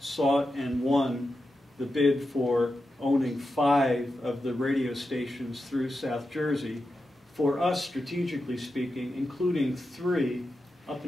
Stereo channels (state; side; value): normal; both; correlation 0.90